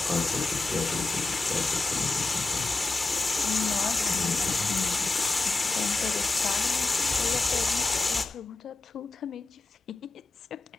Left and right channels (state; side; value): quieter; right; 3.4 dB